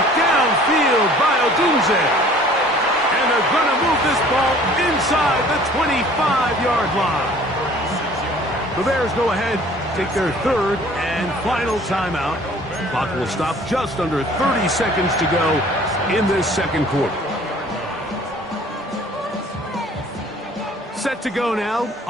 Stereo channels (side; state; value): both; normal; correlation 0.52